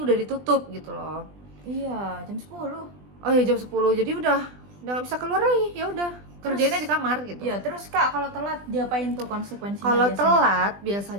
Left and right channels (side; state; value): left; late; 20 ms